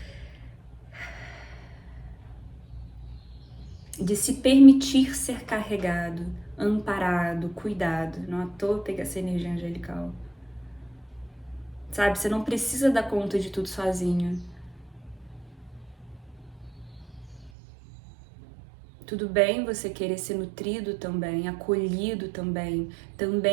De se permitir ser carregado, amparado, cuidado. Não à toa pegar essa energia angelical. Sabe, você não precisa dar conta de tudo sozinho. Tudo bem você querer ser nutrido também, acolhido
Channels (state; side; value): drops out; left; at 17.5 s